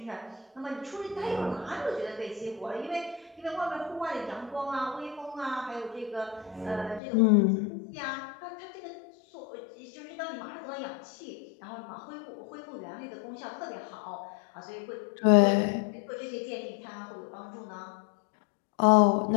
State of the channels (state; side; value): drops out; right; at 7.0 s